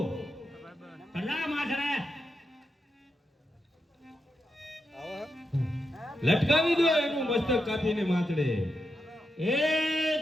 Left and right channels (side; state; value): both; normal; correlation 0.86